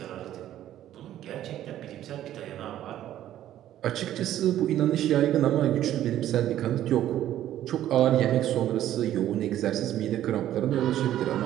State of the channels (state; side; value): quieter; left; 12.4 dB